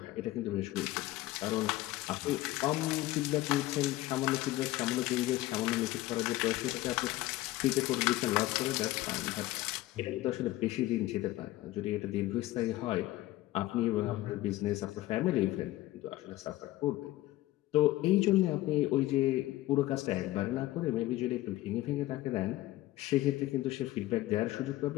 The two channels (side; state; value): right; quieter; 16.9 dB